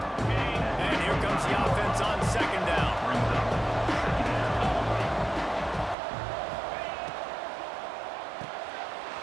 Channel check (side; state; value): left; drops out; at 6.0 s